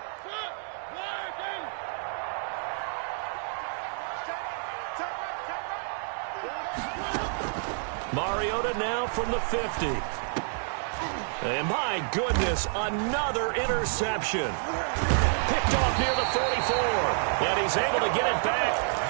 Mariota now from the 50. And my goodness, another interception. Picked off near the 44. And he's able to get it back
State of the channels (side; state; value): left; silent; 59 dB below the other